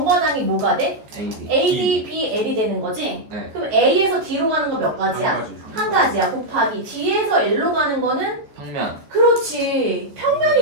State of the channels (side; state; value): left; late; 14 ms